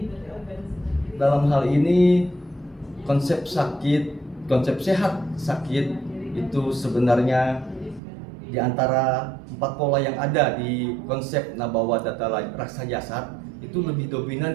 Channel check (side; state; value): left; drops out; at 8.0 s